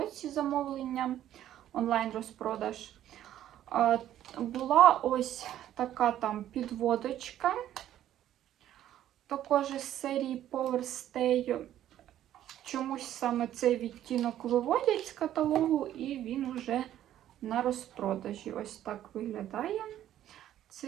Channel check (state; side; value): quieter; left; 12.0 dB